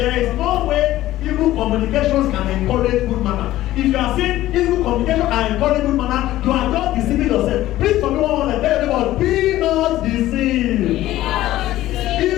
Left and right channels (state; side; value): quieter; right; 14.9 dB